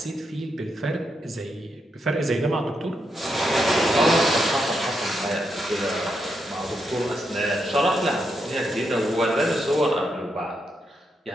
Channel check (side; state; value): both; normal; correlation 0.82